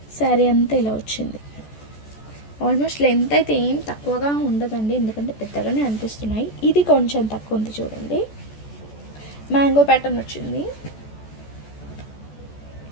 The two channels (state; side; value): late; right; 14 ms